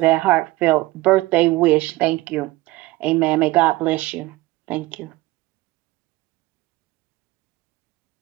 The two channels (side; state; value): left; quieter; 19.7 dB